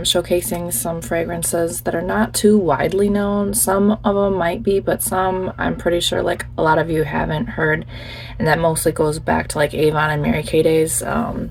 showcasing some fragrances that are not too widely known. Some of them might be, but some I'm pretty sure like a lot of you haven't heard, and that mostly goes back to like Avon and Mary Kay days.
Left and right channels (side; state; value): both; identical; correlation 1.00